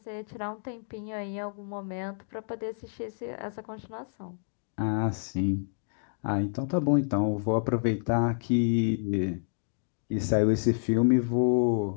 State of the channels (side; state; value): right; silent; digital silence